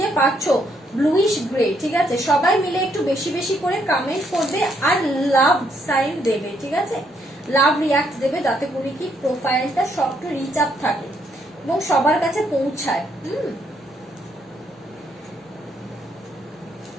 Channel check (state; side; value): normal; both; correlation 0.73